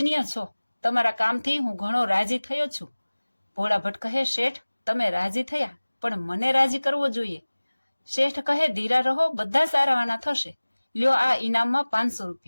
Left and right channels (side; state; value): both; inverted; correlation -1.00